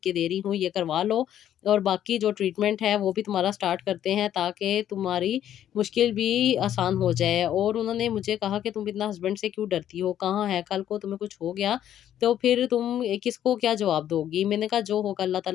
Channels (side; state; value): right; quieter; 10.9 dB